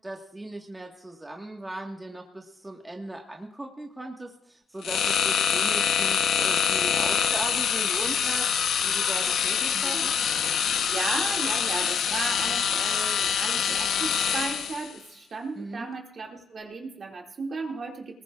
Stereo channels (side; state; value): right; quieter; 5.7 dB